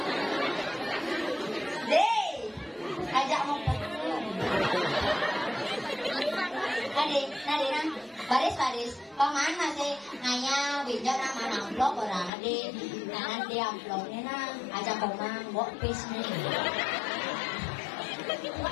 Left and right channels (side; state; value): right; drops out; at 12.3 s